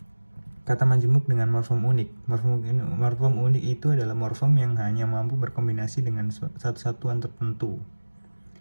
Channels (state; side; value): inverted; both; correlation -1.00